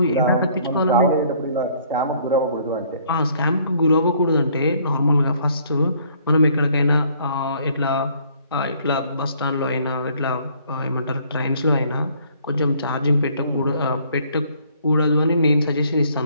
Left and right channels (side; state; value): both; inverted; correlation -0.61